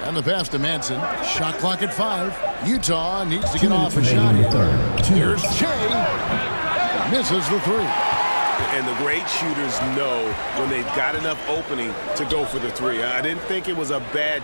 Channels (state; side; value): inverted; both; correlation -1.00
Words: And the pass to Manson. Shot clock at 5. Utah needs to get off a shot here. Here's Shea. Misses the 3. And the great shooters know when they've got enough opening to go for the 3. I didn't think it was a